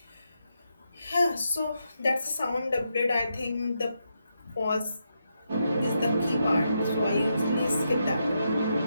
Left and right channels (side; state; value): both; inverted; correlation -0.83